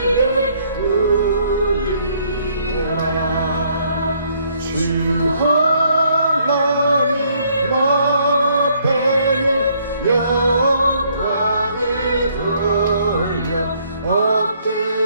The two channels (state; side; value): inverted; both; correlation -0.67